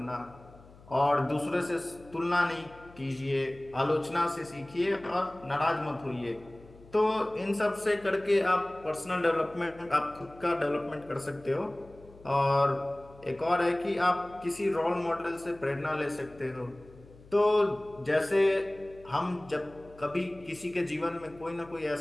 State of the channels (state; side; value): noise; left; hum, 23 dB below the sound